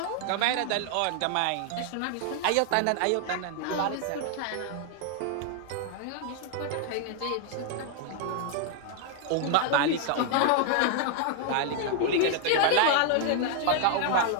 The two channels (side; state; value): both; different; correlation 0.00